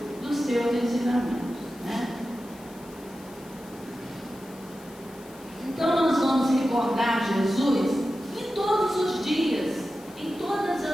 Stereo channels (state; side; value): noise; left; hiss, 23 dB below the sound